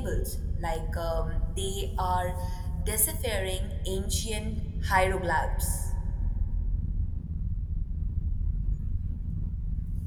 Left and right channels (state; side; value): identical; both; correlation 1.00